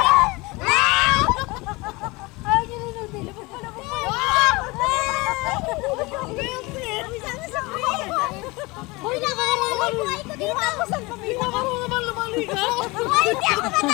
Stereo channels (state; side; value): quieter; right; 24.0 dB